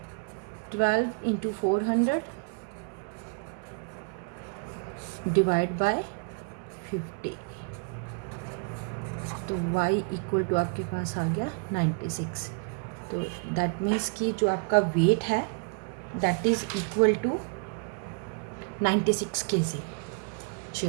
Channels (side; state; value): left; quieter; 36.8 dB